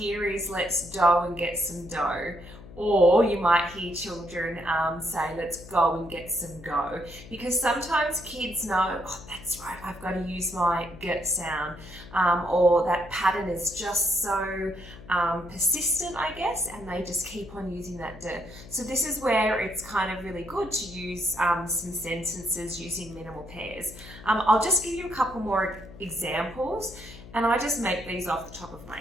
is, let's dough and get some dough. Or you might hear children say, let's go and get some go. Because sometimes kids know, oh, that's right, I've got to use my girt sound. Or that pattern is just so persistent, I guess, and they just keep on using that d. So this is where it's kind of really good to use some sentences using minimal pairs. I'll just give you a couple more examples, and I just make these off the top of my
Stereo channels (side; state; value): left; noise; hum, 17 dB below the sound